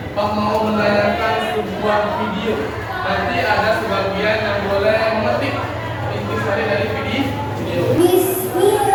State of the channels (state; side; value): identical; both; correlation 1.00